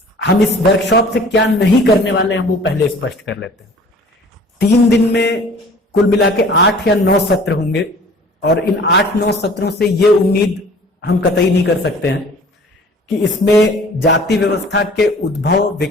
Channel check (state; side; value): normal; both; correlation 0.49